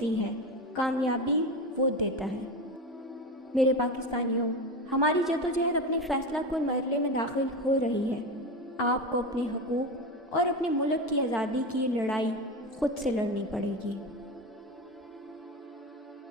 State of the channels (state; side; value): normal; both; correlation 0.21